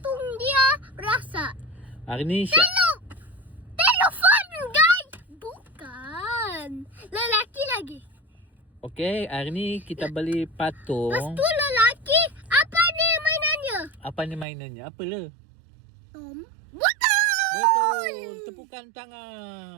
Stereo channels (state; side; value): drops out; left; at 14.5 s